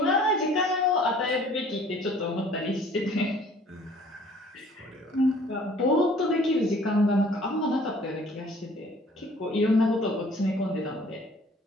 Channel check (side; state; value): both; normal; correlation 0.54